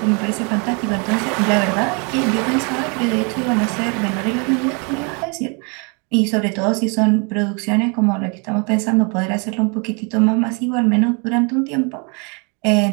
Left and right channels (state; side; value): quieter; left; 34.3 dB